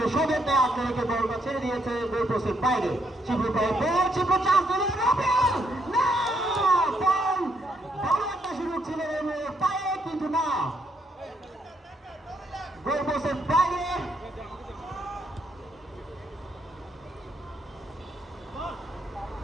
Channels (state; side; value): normal; both; correlation 0.74